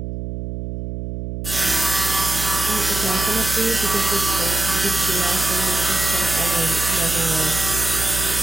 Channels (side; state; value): right; noise; hum, 6 dB below the sound